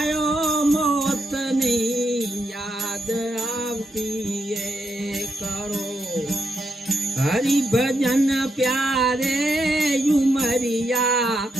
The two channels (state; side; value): normal; both; correlation 0.82